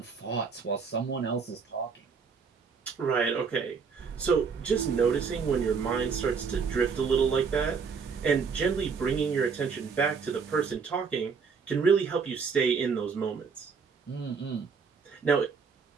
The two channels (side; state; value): left; quieter; 5.6 dB